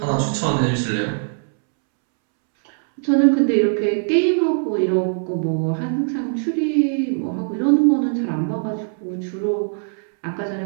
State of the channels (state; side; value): silent; left; 65 dB below the other